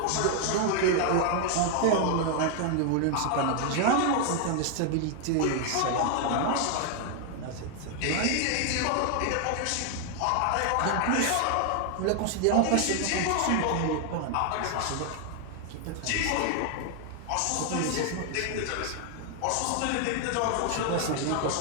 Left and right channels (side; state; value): both; different; correlation 0.00